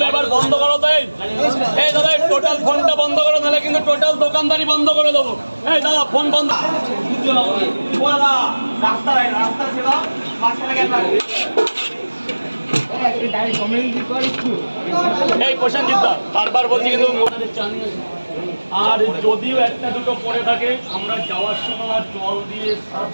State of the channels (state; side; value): inverted; both; correlation -1.00